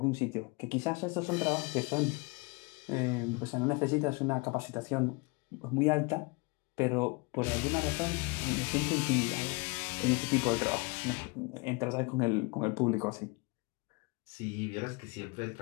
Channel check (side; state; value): right; quieter; 28.4 dB